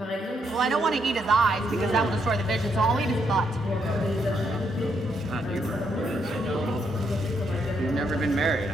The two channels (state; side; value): normal; both; correlation 0.76